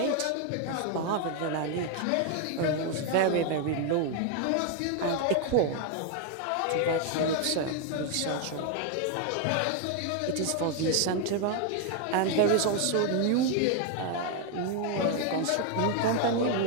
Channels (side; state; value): both; different; correlation 0.01